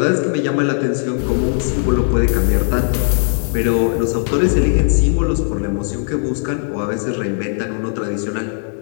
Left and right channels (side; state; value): right; silent; 63 dB below the other